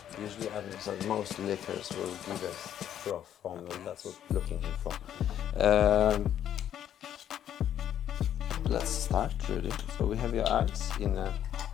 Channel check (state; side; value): quieter; right; 10.4 dB